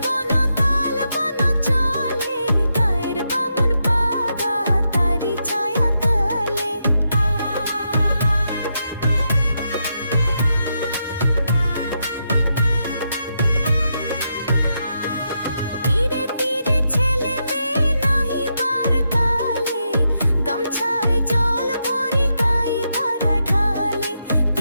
বন তাল বন চলে, গায়ের বামুন পাগা তারি ছায়া তলে। তীরে তীরে ছেলে মেয়ে নাহিবার কালে, গামছায় জল ভরি গাই তারা ঢালে।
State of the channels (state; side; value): inverted; both; correlation -0.83